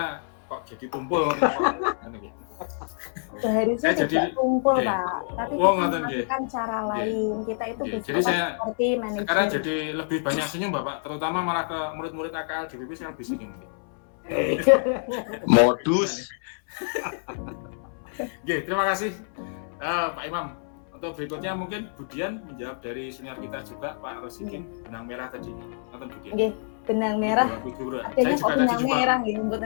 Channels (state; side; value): silent; right; 60 dB below the other